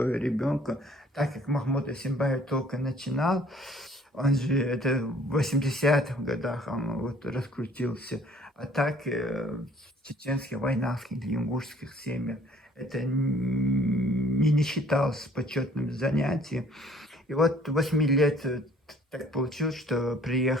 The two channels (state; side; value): normal; both; correlation 0.56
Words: ребенка. Так как Махмуд Асимбаев только начинал, он же это в 80-х годах он вот раскрутился. А так в чеченских, войнавских, ингушских семьях это не считалось почетным занятием. И вот 8 лет так получилось, что